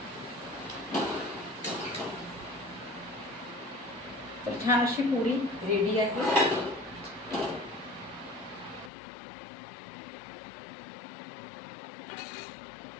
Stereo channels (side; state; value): right; drops out; at 8.9 s